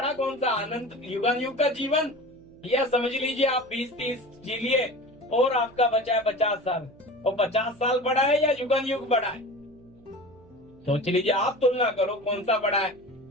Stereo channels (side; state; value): right; noise; hum, 26 dB below the sound